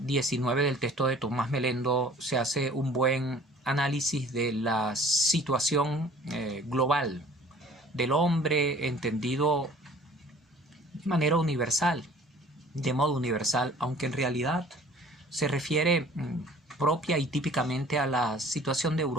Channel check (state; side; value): normal; both; correlation 0.51